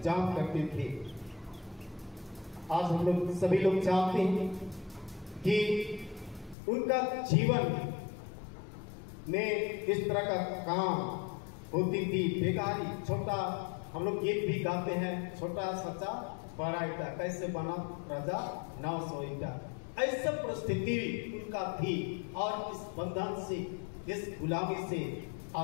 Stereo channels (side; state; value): right; drops out; at 6.6 s